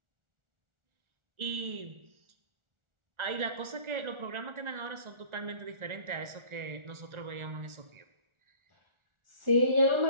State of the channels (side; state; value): left; late; 1.4 ms